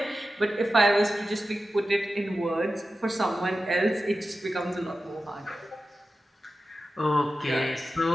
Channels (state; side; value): normal; both; correlation 0.93